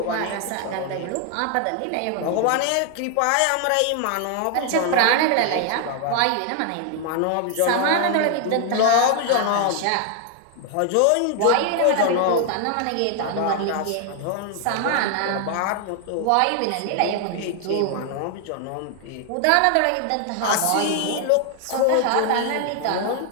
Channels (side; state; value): both; different; correlation 0.00